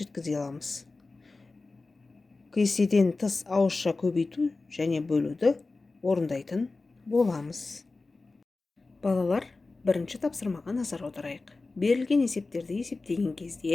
жеткізе аламыз. Кестеден тыс ауызша көбейту және бөлуді орындайтын боламыз. Балалар, бірінші тапсырмаға назар аударайық. Берілген есептерді есептеген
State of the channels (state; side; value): quieter; right; 3.6 dB